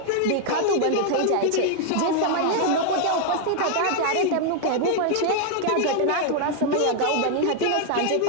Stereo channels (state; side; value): different; both; correlation 0.00